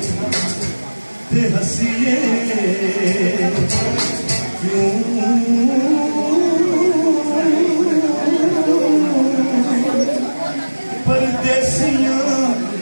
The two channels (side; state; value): both; inverted; correlation -1.00